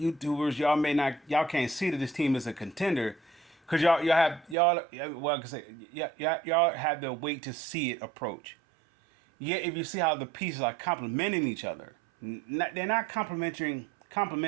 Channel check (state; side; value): drops out; left; at 4.5 s